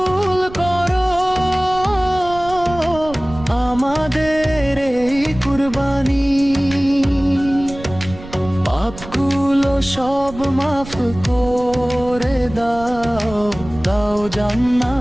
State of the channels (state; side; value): noise; right; rumble, 14 dB below the sound